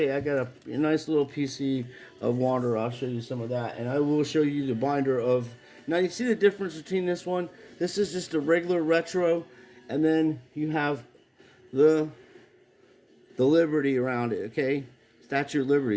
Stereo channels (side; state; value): both; identical; correlation 1.00